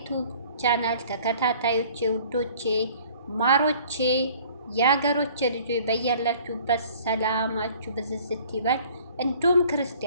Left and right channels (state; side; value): inverted; both; correlation -0.52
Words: ቻናል ተከታታዮቼ፣ ውዶቼ፣ ማሮቼ፣ የሀገሮቼ ልጆች በያላችሁበት ሰላማችሁ ብዝዝት ይበል። እንዲሁም